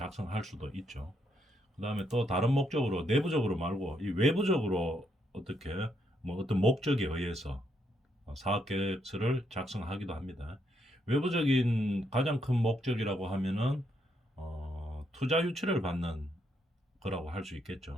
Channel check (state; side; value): normal; both; correlation 0.76